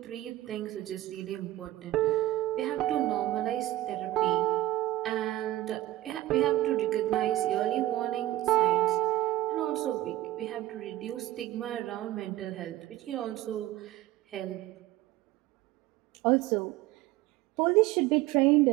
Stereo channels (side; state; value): left; quieter; 16.1 dB